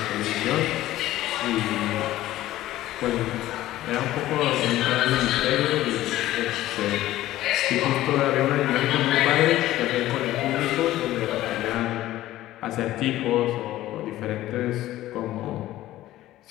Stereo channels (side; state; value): right; quieter; 15.0 dB